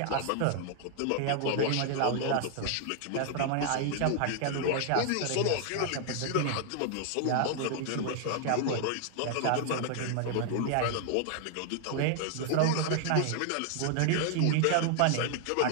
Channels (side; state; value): both; different; correlation 0.00